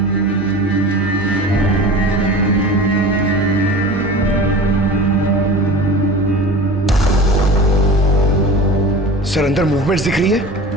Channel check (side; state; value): both; normal; correlation 0.36